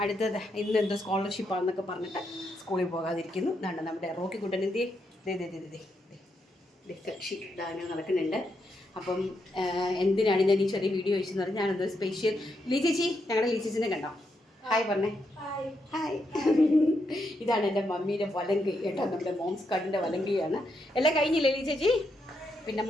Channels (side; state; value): both; normal; correlation 0.81